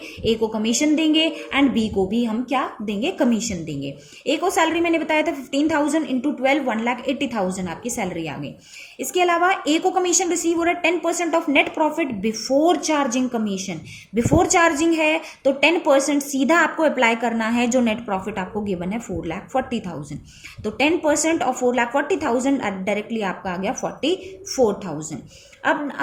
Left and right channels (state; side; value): identical; both; correlation 1.00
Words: ए को कमीशन देंगे एंड बी को भी हम क्या देंगे, कमीशन देंगे। ए को सैलरी मैंने बताया था 15,000 इंटू 12, 1,80,000 आपकी सैलरी आ गई। इसके अलावा ए को कमीशन रिसीव हो रहा है 10% of net profit before charging commission. Before charging है तो 10% सीधा आपको अप्लाई करना है जो नेट प्रॉफिट आपको गिवन है 4,40,000। तो 10% ऑफ 4,40,000 डायरेक्टली आपका आ गया 44,000।